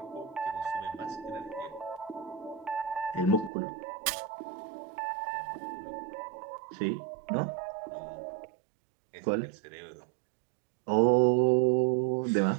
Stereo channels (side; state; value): left; drops out; at 3.5 s